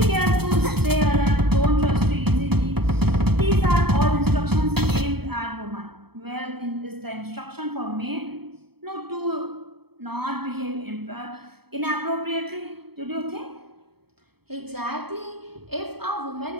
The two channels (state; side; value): late; left; 0.97 ms